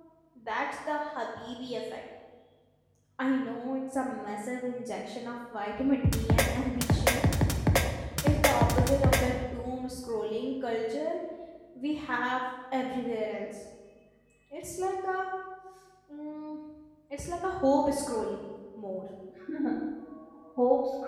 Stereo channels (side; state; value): both; identical; correlation 1.00